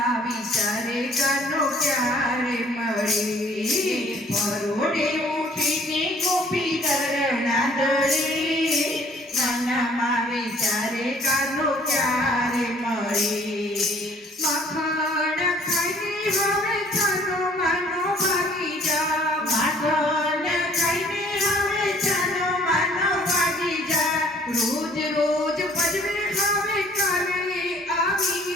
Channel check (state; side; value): normal; both; correlation 0.57